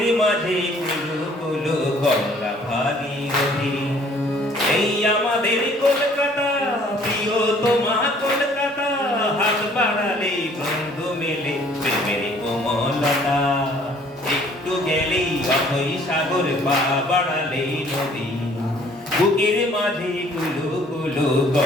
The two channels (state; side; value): normal; both; correlation 0.57